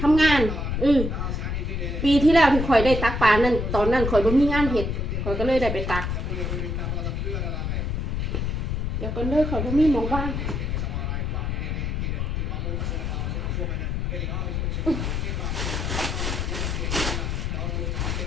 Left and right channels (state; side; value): noise; left; rumble, 1 dB below the sound